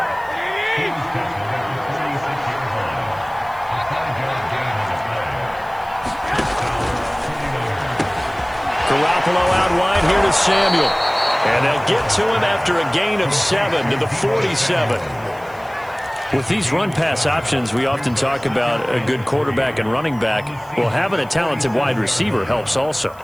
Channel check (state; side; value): noise; right; hiss, 26 dB below the sound